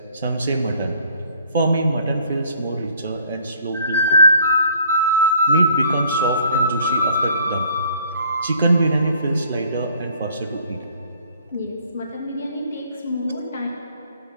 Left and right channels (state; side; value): inverted; both; correlation -0.58